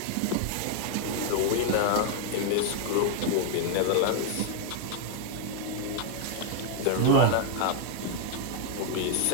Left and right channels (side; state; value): both; different; correlation 0.00